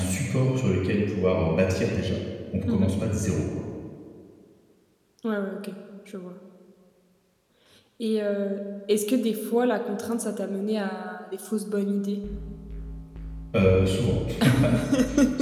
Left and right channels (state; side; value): identical; both; correlation 1.00